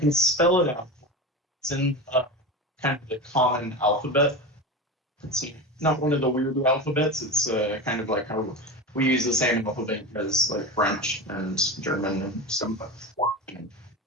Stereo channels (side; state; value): both; normal; correlation 0.25